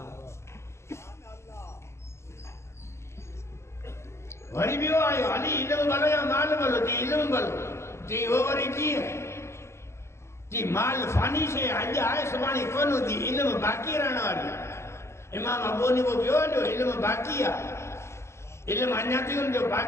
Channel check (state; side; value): late; right; 0.13 ms